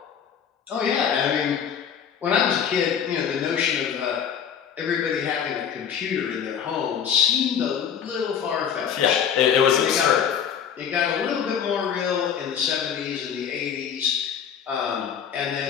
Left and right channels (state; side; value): quieter; right; 8.0 dB